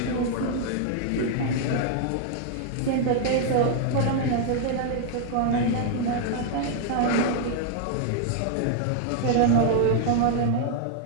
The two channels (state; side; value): different; both; correlation 0.00